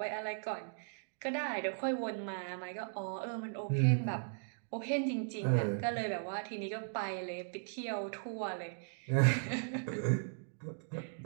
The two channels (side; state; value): left; silent; digital silence